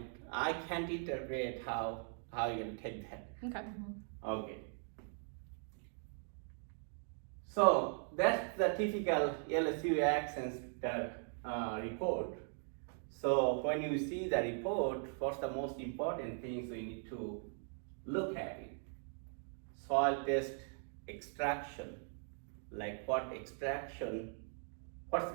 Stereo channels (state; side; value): silent; left; 51 dB below the other